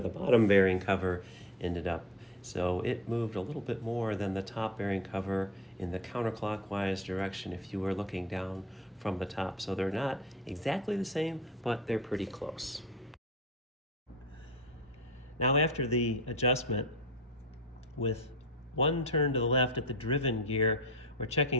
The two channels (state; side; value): normal; both; correlation 0.38